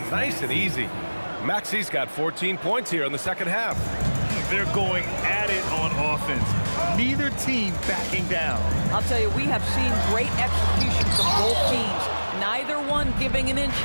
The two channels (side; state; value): both; inverted; correlation -1.00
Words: nice and easy. Maxey's got 14 points here in the second half. They're going at it on offense. Neither team backing down. I'll tell you, we have seen great execution from both teams. Neither one giving an inch